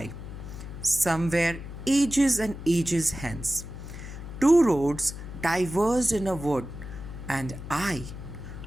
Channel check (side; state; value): left; noise; hum, 10 dB below the sound